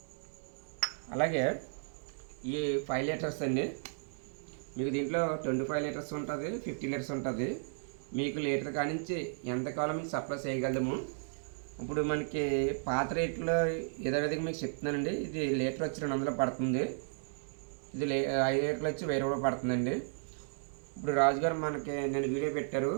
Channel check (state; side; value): silent; left; 55 dB below the other